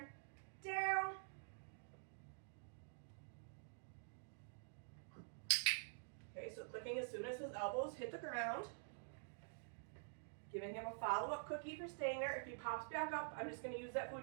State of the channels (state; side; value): silent; left; digital silence